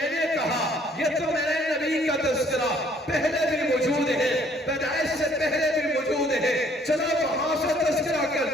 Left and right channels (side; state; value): both; normal; correlation 0.61